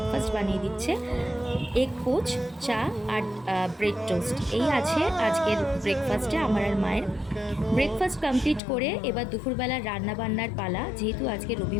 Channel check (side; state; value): right; drops out; at 8.6 s